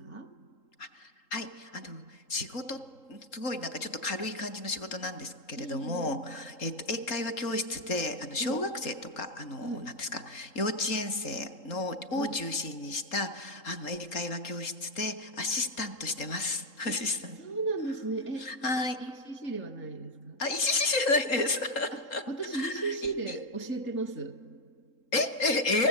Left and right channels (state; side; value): late; right; 3.8 ms